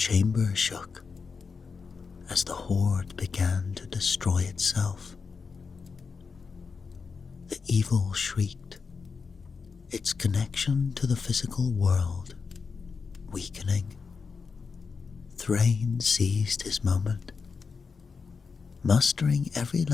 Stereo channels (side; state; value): right; quieter; 5.2 dB